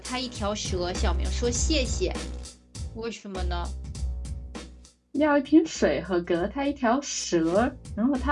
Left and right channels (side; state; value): both; identical; correlation 1.00